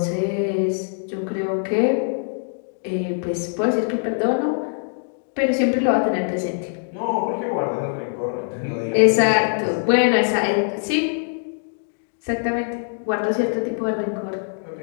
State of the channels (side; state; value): right; silent; digital silence